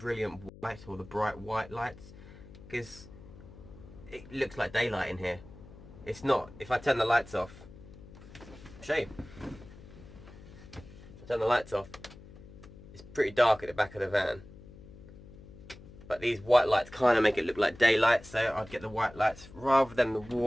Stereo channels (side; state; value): left; noise; hum, 18 dB below the sound